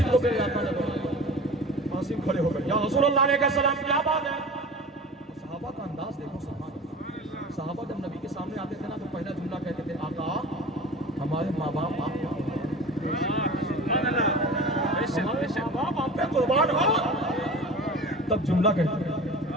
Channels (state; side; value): normal; both; correlation 0.37